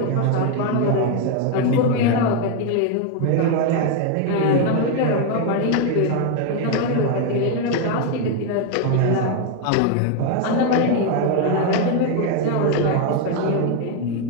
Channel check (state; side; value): different; both; correlation 0.01